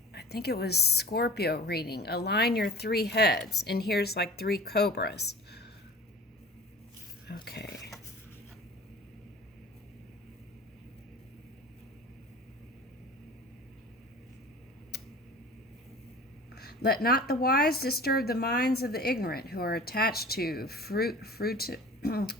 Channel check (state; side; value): normal; both; correlation 0.41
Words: I think it was Scorpio reading. Align your three heads. And here's like three cobras. Okay. Let not the wise disturb the minds of the ignorant who are attached to fruitive